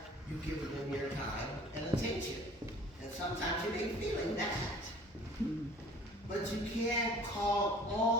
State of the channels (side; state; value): both; normal; correlation 0.49